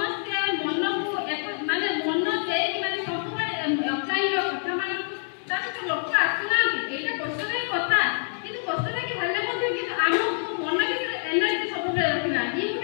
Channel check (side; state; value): right; silent; digital silence